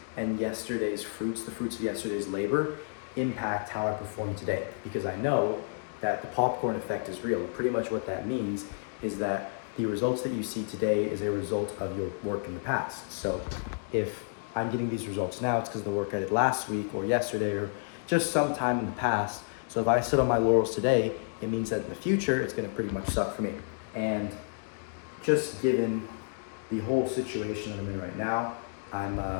and yesterday's fruits, the fruits of yesterday's labor, impact how I perform today. Because I know that the popcorn effect is real. Pretty much what that means is that the results that you see today is a result of your work in the past. So if I'm getting these results now, it's because of the work I did last week or yesterday or just sometime in the past. So if I sit on my laurels today, it means that in the future, it's gonna pretty much suck for me. And just given the whole situation that I'm in right now,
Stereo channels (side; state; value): right; silent; digital silence